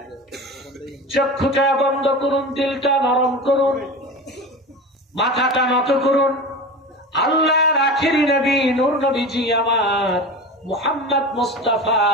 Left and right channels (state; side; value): normal; both; correlation 0.30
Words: চক্ষুটা বন্ধ করুন দিলটা নরম করুন মাথাটা নত করুন আল্লাহর আখিরি নবী নূর নবীজি আমার মুহাম্মদ মুস্তাফা